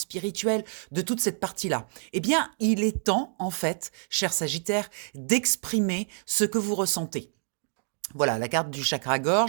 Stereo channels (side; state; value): left; silent; 57 dB below the other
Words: de toute cette partie-là. Eh bien, il est temps, en fait, cher Sagittaire, d'exprimer ce que vous ressentez. Voilà, la carte du